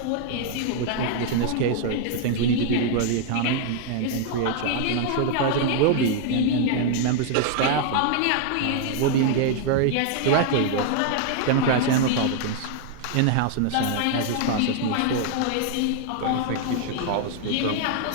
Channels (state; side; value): different; both; correlation 0.00